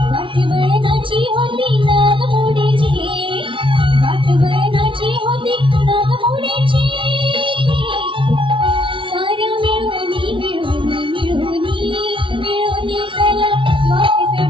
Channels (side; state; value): left; late; 0.25 ms